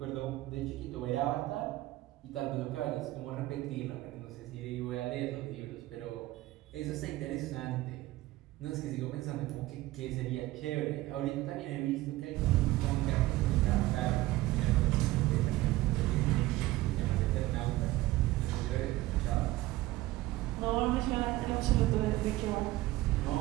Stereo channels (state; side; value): quieter; left; 17.6 dB